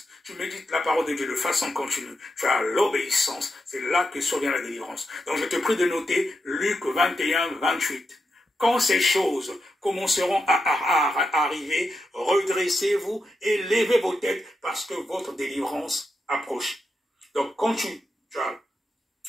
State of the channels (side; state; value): both; normal; correlation 0.86